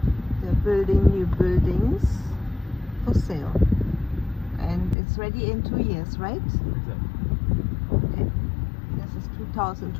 they're building new buildings for sale, and it's ready in 2 years, right? Exactly. Okay. This is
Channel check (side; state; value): right; drops out; at 5.0 s